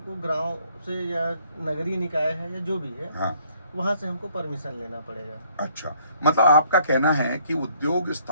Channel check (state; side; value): inverted; both; correlation -0.64